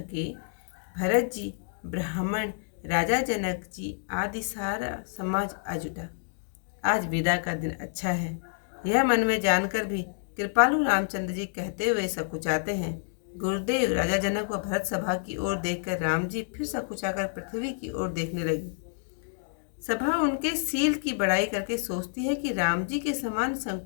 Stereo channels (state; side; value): silent; right; digital silence